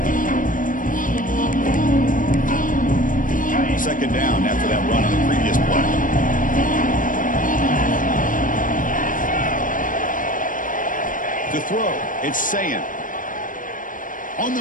Second down after that run on the previous play. To throw, it's Sayan. On the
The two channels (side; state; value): right; late; 0.39 ms